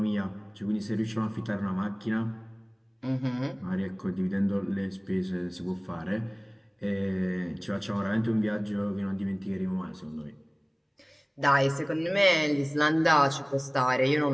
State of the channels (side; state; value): both; identical; correlation 1.00